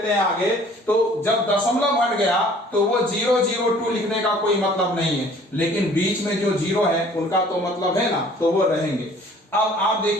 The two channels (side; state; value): both; normal; correlation 0.53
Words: हैं आगे, तो जब दशमलव हट गया तो वो 0 0 2 लिखने का कोई मतलब नहीं है, लेकिन बीच में जो जीरो है उनका तो मतलब है ना, तो वो रहेंगे। अब आप